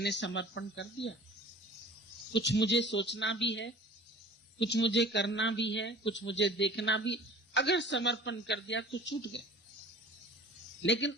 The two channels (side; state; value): both; normal; correlation 0.44